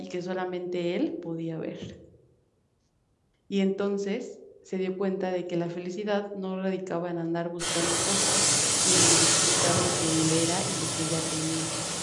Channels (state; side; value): identical; both; correlation 1.00